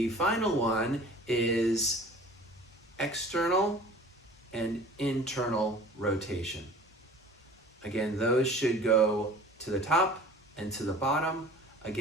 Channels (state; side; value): normal; both; correlation 0.44